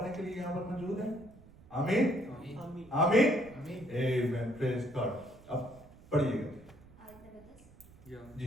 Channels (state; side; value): noise; right; rumble, 22 dB below the sound